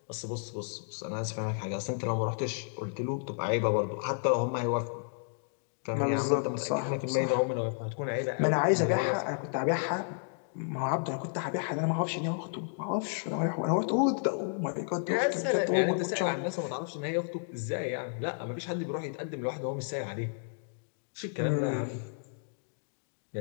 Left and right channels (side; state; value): right; silent; digital silence